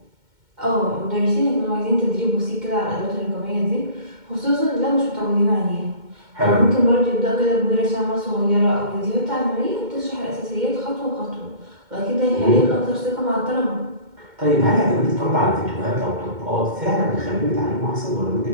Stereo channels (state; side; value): late; left; 2.2 ms